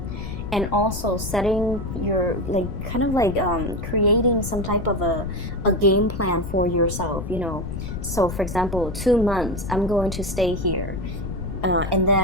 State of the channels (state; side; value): noise; left; rumble, 6 dB below the sound